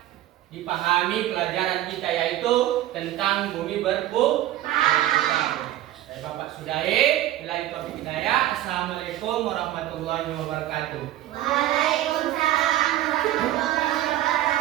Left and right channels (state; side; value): quieter; left; 14.0 dB